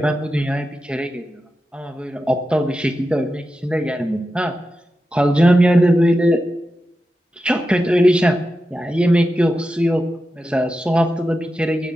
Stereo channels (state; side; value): normal; both; correlation 0.91